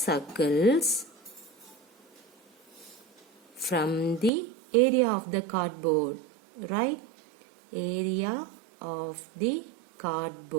from the area of the cardboard, right? Area of the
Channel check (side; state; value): left; drops out; at 4.3 s